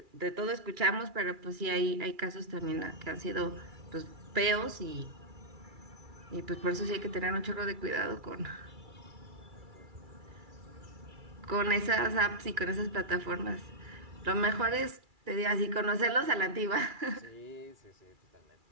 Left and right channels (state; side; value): late; left; 2.3 ms